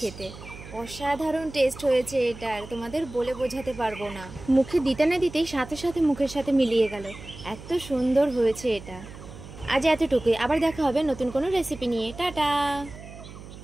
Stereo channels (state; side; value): noise; right; hum, 15 dB below the sound